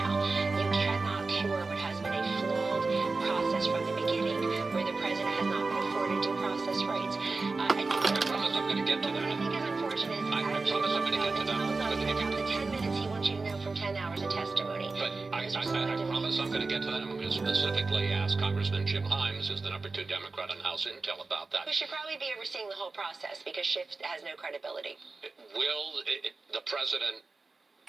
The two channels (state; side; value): quieter; left; 3.8 dB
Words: You cannot cure what has been a flawed process from the beginning, where the president has not been afforded due process rights. I promise I'm going to get to What I that. think is unfortunate is I promise I'm going to get to that. about the 10 minutes he wants you to know from 10 hours of testimony. But I promise I'm going to get to that. I'm going to specifically ask Congressman Jim Himes, who's the #2 Democrat on House Intel, about that. Who should probably be overseeing the whole process because Schiff has no credibility. Will the president